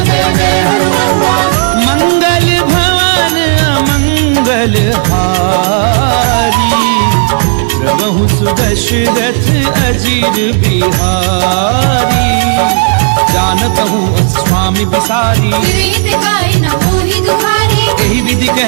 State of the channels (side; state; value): left; silent; digital silence